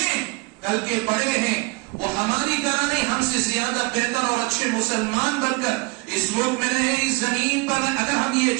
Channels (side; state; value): left; quieter; 28.2 dB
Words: کل کے بڑے ہیں، وہ ہماری طرح نہیں، ہم سے زیادہ بہتر اور اچھے مسلمان بن کر اس ملک میں رہیں، اس زمین پر رہیں، اگر ہم یہ